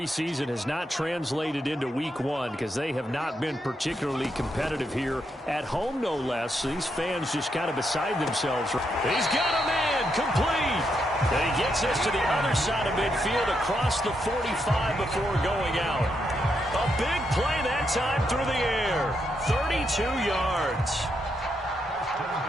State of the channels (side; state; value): both; normal; correlation 0.80